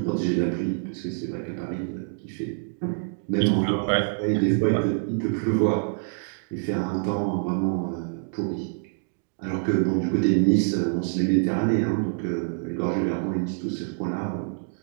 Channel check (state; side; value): silent; left; digital silence